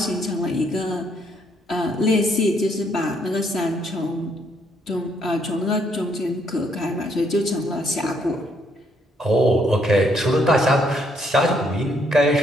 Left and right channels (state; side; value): normal; both; correlation 0.71